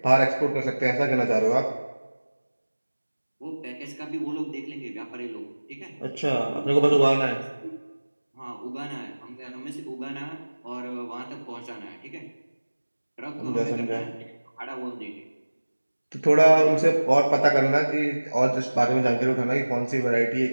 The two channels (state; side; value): inverted; both; correlation -1.00